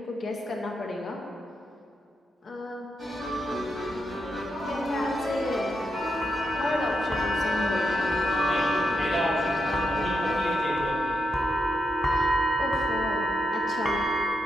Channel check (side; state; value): both; normal; correlation 0.83